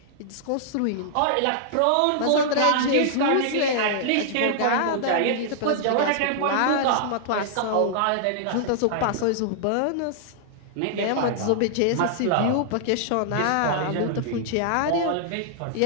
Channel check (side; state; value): both; different; correlation -0.01